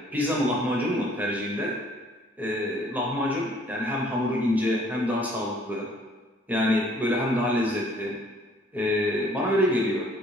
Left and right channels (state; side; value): normal; both; correlation 0.59